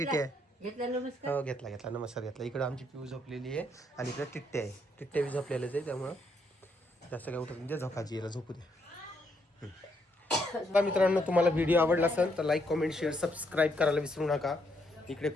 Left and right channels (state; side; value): normal; both; correlation 0.74